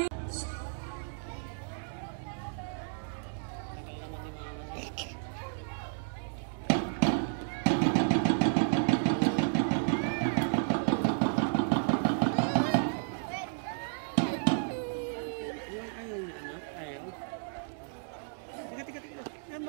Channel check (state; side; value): silent; left; digital silence